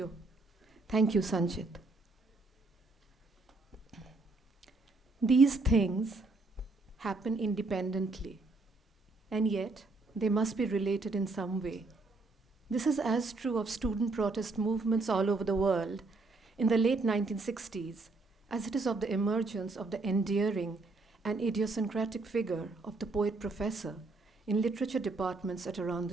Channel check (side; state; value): left; quieter; 3.4 dB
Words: Thank you, Sanjit. These things happen independently, and yet they must be related in some way. This is as true of student protest movements all over the world in the late 1960s as it is of the emergence of the endearing and idiosyncratic figure of the poet professor in literature departments at around the